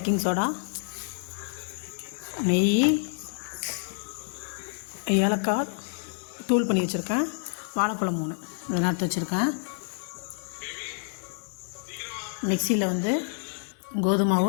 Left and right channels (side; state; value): right; silent; 59 dB below the other